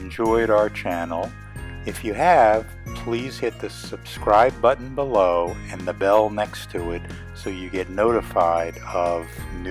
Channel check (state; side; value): identical; both; correlation 1.00